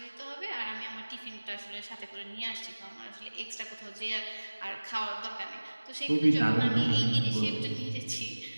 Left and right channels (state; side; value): inverted; both; correlation -1.00